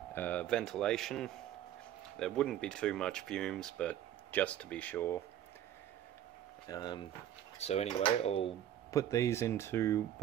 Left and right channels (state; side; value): quieter; left; 11.3 dB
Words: ventilation. There wouldn't be too much fumes, but just to be sure. So anyway, I'll put these into